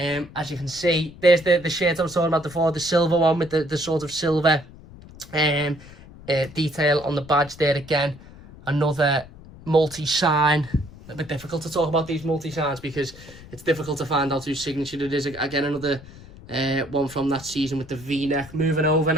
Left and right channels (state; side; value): noise; left; rumble, 19 dB below the sound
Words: you can see, there's the shirt I was talking about before, the silver one with the sort of silver detail on the badge there. Again, another multi-sign. A bit difficult to talk about these multi-signs because it's difficult to find out whose signature it is. Again, another one from that season with the V-neck. Moving over